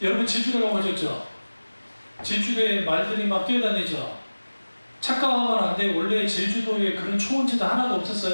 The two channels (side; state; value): both; inverted; correlation -1.00